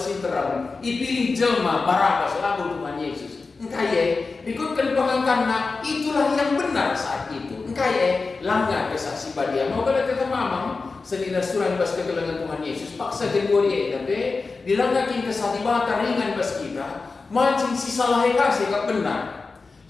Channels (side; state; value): right; quieter; 4.1 dB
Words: ipilih jelma Barabas lalu Tuhan Yesus engkaya ikutkan pengangkatna itulah yang benar saat itu engkaya langgar kesaksi badia mau kada kita mamang senina surah bas kegelangan Tuhan Yesus paksa jenggori tapi dilanggakin kesadibata ringan bas kita mancing si salah eka sekap benar